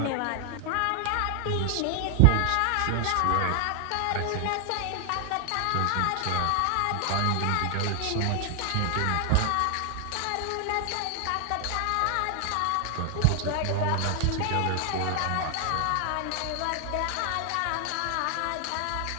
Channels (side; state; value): both; different; correlation 0.00